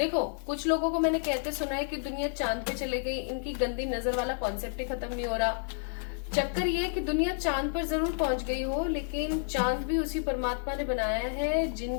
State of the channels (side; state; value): right; silent; 58 dB below the other